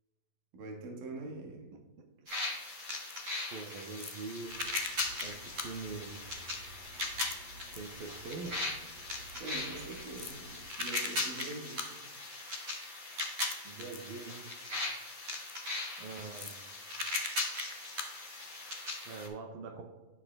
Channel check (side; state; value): left; late; 11 ms